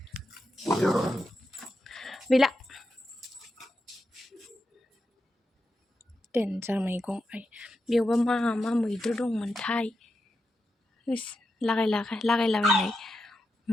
गैला देन्जार मैगं बेयावबा मा मैद्रु दंमोनथाय लागायलाबायनाय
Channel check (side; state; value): both; normal; correlation 0.87